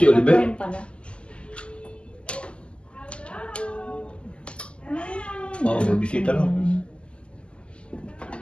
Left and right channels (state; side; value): late; right; 0.052 ms